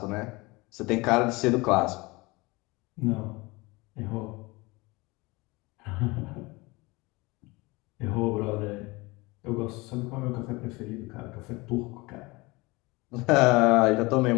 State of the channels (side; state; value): right; quieter; 23.9 dB